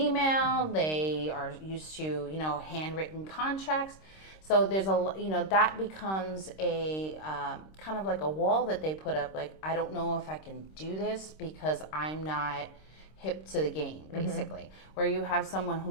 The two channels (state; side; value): late; right; 26 ms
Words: They are used to, handwritten contracts. So there's that becomes a kind of like a wall that they put up. Like, I don't know if I can do this because I'm not hip to the game, basically. Where you have someone